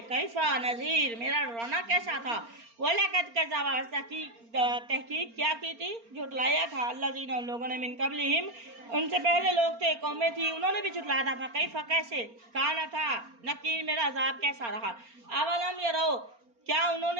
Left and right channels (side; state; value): left; late; 4.3 ms